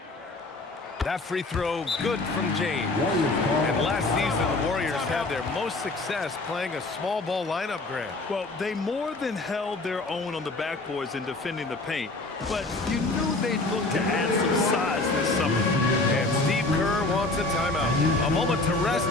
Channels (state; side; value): quieter; right; 3.1 dB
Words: That free throw, good from James. And last season, the Warriors had their most success playing a small ball lineup, Grant. Well, they more than held their own on the backboards in defending the paint. But you knew they'd look to add some size this summer. And Steve Kerr wants a timeout. A moment to rest